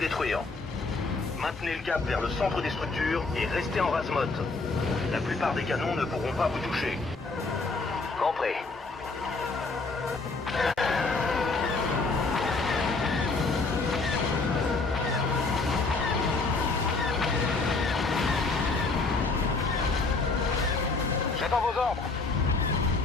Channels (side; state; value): right; quieter; 3.8 dB